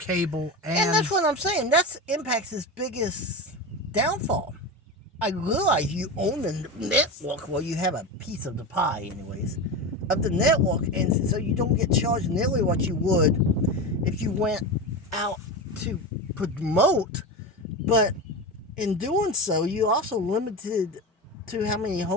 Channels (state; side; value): normal; both; correlation 0.22